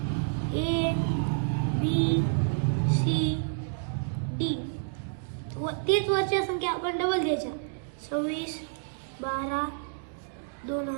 ए बी सी डी तेच वरच्या संख्या आपण डबल द्यायच्या.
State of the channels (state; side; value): silent; left; digital silence